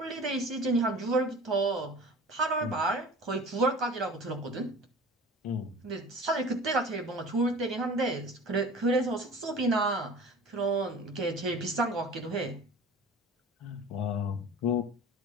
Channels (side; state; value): both; normal; correlation 0.40